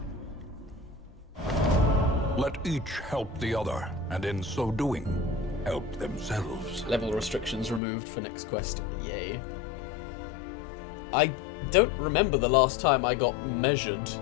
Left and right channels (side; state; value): right; drops out; at 7.8 s